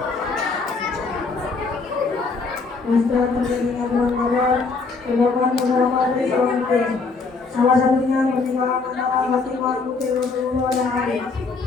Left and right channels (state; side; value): quieter; right; 4.3 dB